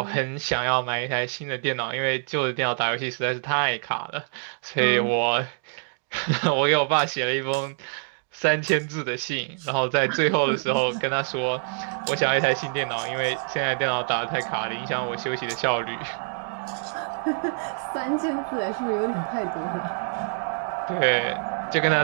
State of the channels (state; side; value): silent; left; 61 dB below the other